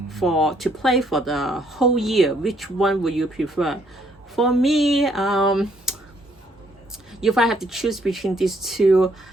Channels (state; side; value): normal; both; correlation 0.68